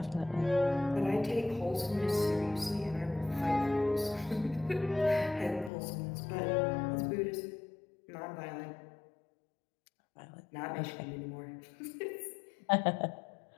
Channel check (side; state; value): right; drops out; at 5.7 s